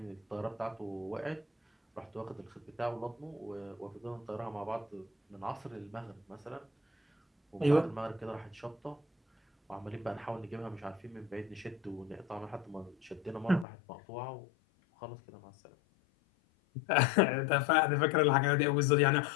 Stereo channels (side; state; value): right; drops out; at 13.7 s